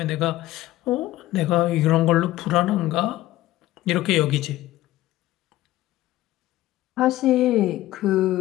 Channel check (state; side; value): quieter; right; 15.8 dB